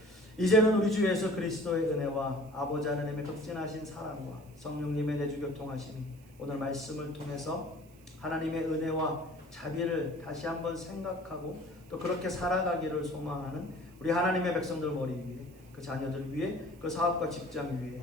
이제는 우리 주 예수 그리스도의 은혜와 아버지 하나님의 극진하신 사랑과 성령님의 내주 교통하심이 오늘 말씀을 통해서 하나님의 은혜와 자비를 다시 한번 생각하고 또 그렇게 살아가기를 소망하는 우리 하나님의 백성들 머리 위에 그 자녀들 위에 그 사업과 직장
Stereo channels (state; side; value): noise; right; hiss, 28 dB below the sound